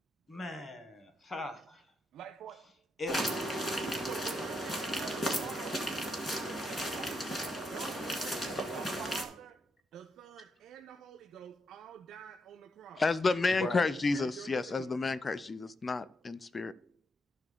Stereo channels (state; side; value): normal; both; correlation 0.82